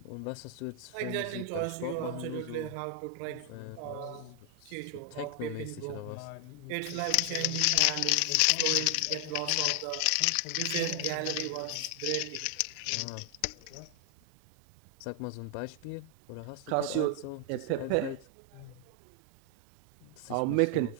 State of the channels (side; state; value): both; different; correlation 0.00